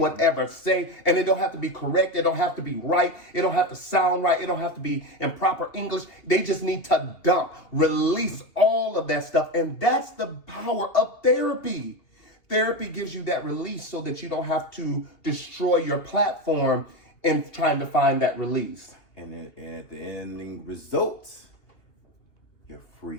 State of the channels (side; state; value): right; late; 2.8 ms